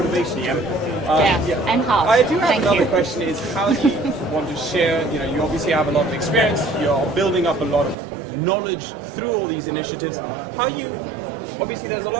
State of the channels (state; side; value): drops out; left; at 8.0 s